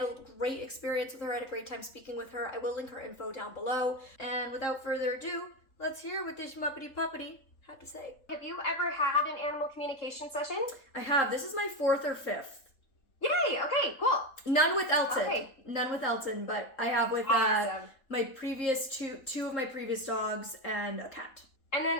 a great experience with her. I had a great time speaking with her. I will link her info down below. And without further ado, let's hear what this muppety puppety had to say. Have you ever had an animal communication session? I have. This is my 4th or 5th. Yay! Okay, cool. None with Elton. Okay. None with Elton, but I have with Awesome. my previous two of my previous dogs and a cat. And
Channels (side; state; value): right; late; 3.8 ms